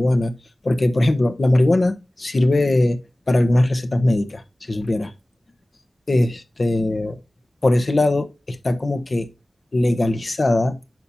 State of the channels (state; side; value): normal; both; correlation 0.98